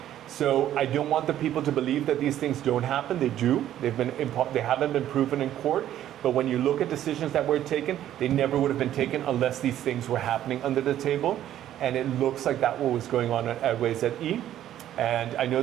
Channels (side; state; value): left; quieter; 11.9 dB